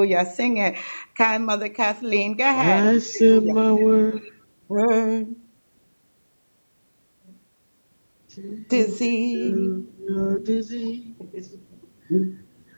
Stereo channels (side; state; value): both; inverted; correlation -1.00